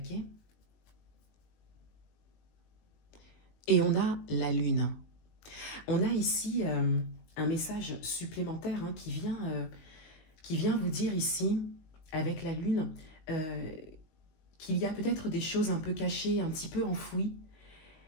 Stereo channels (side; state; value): right; late; 19 ms